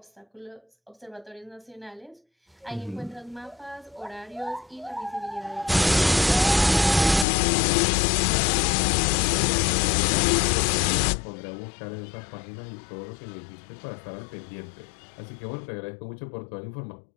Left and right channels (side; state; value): right; drops out; at 7.2 s